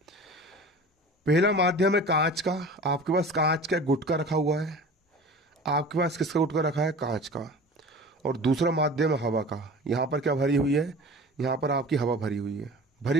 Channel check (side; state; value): both; normal; correlation 0.39